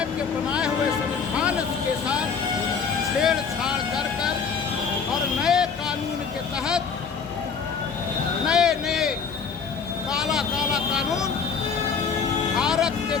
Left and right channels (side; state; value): right; quieter; 5.9 dB